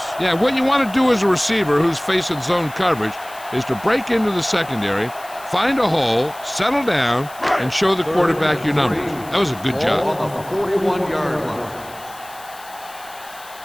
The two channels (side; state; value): left; noise; hiss, 20 dB below the sound